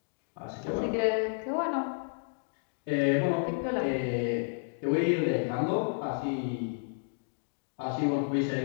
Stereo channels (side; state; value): right; silent; digital silence